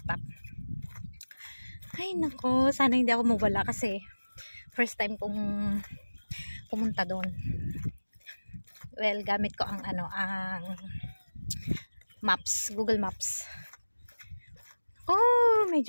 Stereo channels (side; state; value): both; inverted; correlation -1.00